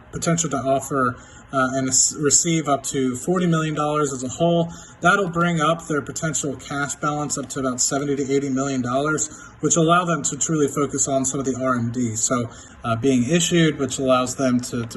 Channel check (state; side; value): identical; both; correlation 1.00